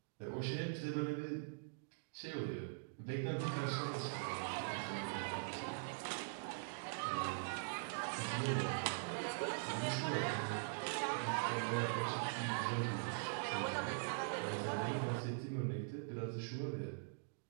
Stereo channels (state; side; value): silent; left; digital silence